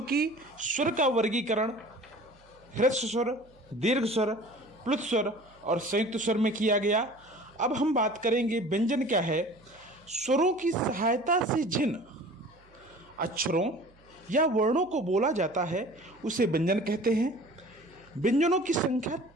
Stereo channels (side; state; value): right; noise; hum, 29 dB below the sound